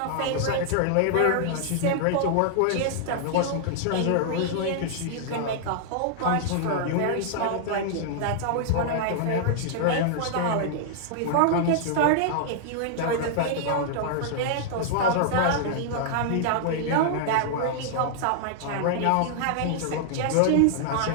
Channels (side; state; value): both; different; correlation -0.01